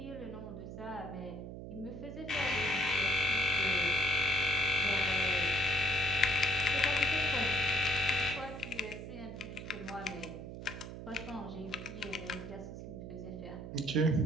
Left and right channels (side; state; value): right; noise; hum, 10 dB below the sound